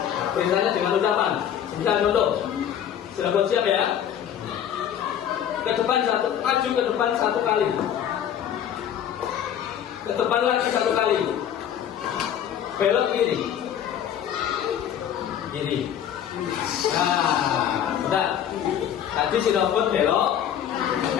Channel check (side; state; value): right; quieter; 9.7 dB